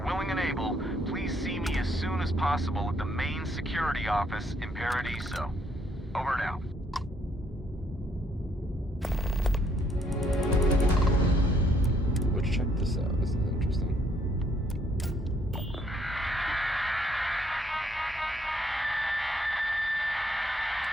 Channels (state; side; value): normal; both; correlation 0.69